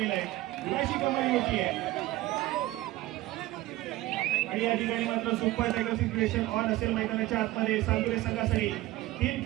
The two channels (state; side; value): quieter; left; 17.1 dB